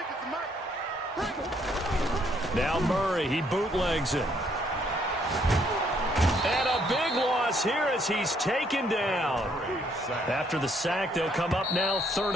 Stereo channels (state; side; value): normal; both; correlation 0.69